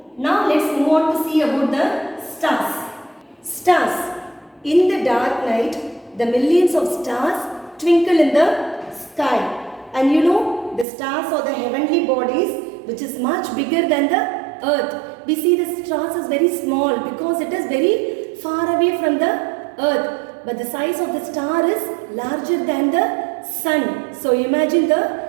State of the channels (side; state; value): left; drops out; at 10.9 s